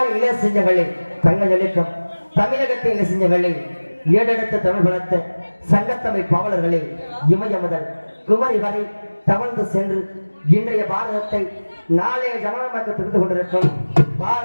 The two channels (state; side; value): inverted; both; correlation -1.00